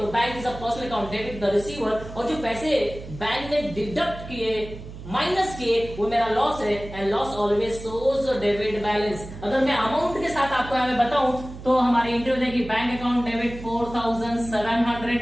bank is a personal account, debit the receiver, और जो पैसे बैंक ने डिडक्ट किए, माइनस किए, वो मेरा लॉस है। And loss always shows debit balance. अगर मैं अमाउंट के साथ आपको यहाँ बताऊं तो हमारी एंट्री हो जाएगी, bank account debit 4700,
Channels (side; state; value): right; noise; hum, 13 dB below the sound